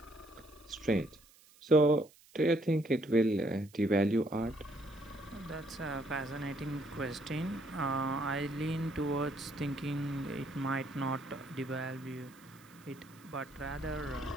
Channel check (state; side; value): noise; right; hiss, 26 dB below the sound